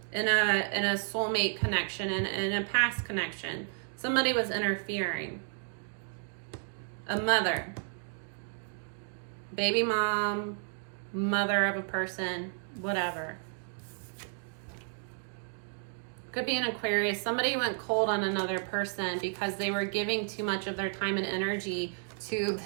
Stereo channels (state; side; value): silent; left; 56 dB below the other